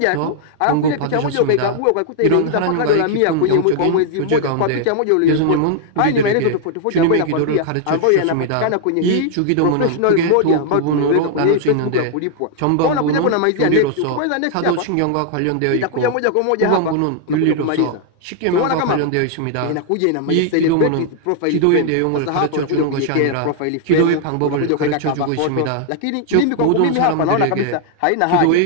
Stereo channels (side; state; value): both; different; correlation 0.00